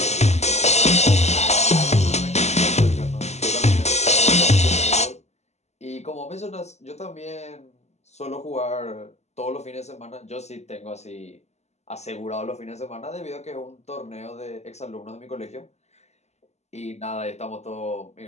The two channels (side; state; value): right; late; 0.32 ms